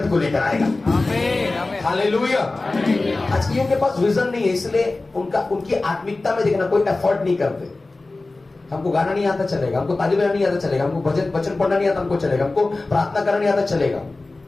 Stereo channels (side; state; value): right; quieter; 3.2 dB